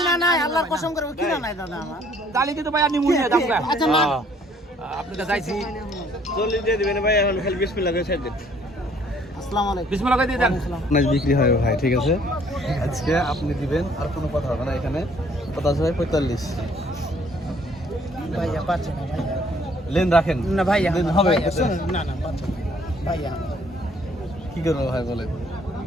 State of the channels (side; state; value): both; normal; correlation 0.61